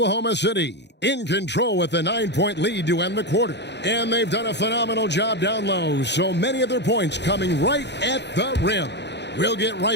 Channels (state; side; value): late; right; 0.50 ms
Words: City in control with a 9-point lead to end the quarter. And they've done a phenomenal job down low, so many of their points coming right at the rim. We'll get